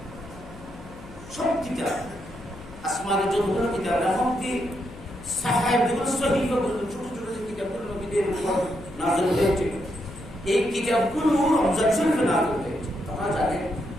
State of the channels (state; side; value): noise; left; hum, 17 dB below the sound